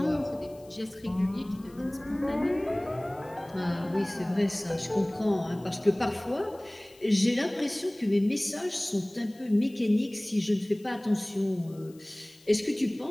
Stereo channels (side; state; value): left; noise; hiss, 27 dB below the sound